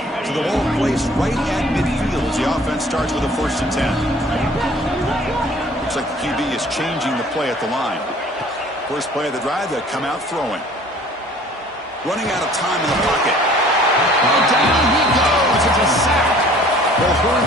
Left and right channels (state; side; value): normal; both; correlation 0.52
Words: So the ball placed right at midfield as the offense starts with a 1st and 10. Looks like the QB is changing the play at the line. First play of the drive, they'll come out throwing. Running out of time in the pocket. Oh, down he goes. It's a sack. They'll hurry